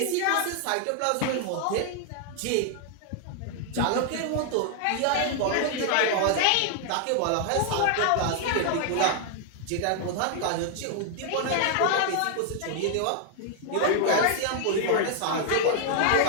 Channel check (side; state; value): both; different; correlation 0.00